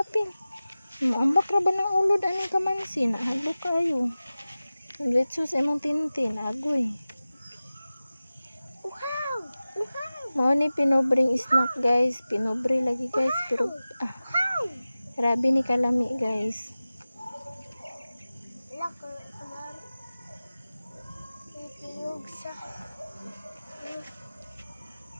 Maambak ra ba ng ulod ani kamansi na hadlok kayo. Letso sa imong tintin agoy. Wow! Mao ni pinobring snack guys. Pinobre lagi guys pero grabe ni kalami guys.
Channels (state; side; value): inverted; both; correlation -0.97